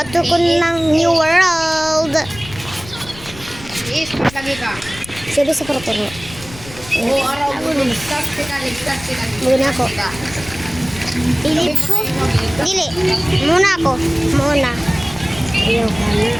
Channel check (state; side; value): noise; left; rumble, 17 dB below the sound